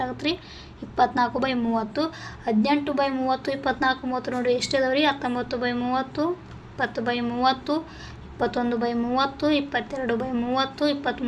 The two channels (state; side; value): identical; both; correlation 1.00